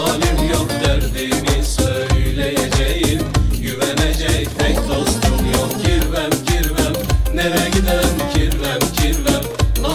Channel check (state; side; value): identical; both; correlation 1.00